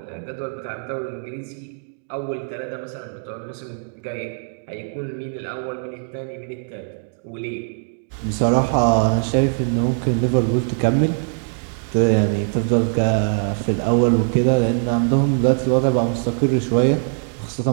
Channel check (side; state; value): left; silent; digital silence